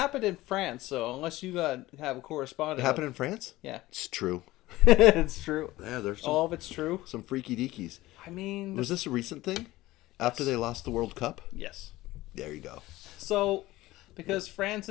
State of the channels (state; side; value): quieter; right; 17.7 dB